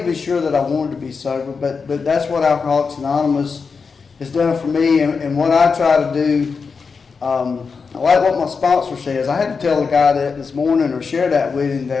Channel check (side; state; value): right; quieter; 5.2 dB